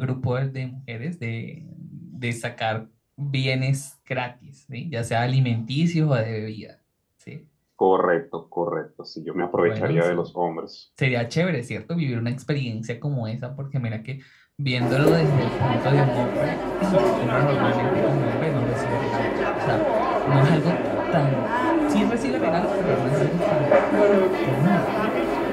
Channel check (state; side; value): identical; both; correlation 1.00